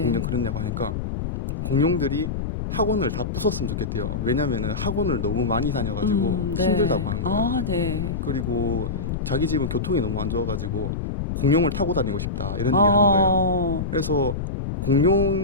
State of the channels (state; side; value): noise; left; rumble, 3 dB below the sound